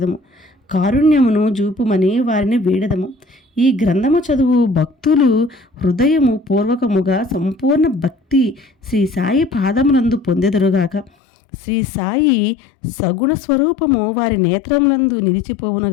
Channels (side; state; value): right; drops out; at 11.1 s